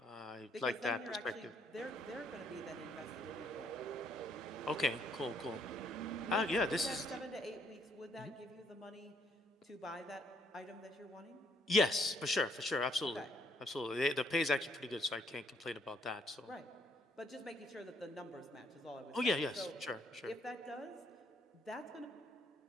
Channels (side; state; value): both; normal; correlation 0.69